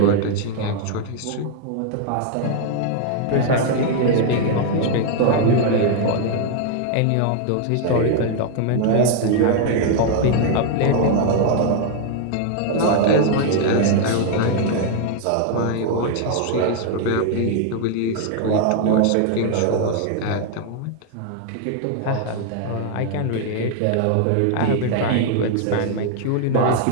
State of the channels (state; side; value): different; both; correlation 0.00